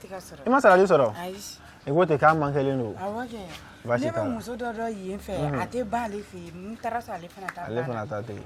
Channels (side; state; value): both; identical; correlation 1.00